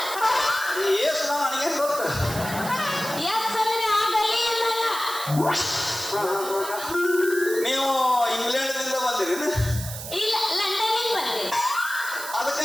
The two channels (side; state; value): right; noise; hiss, 9 dB below the sound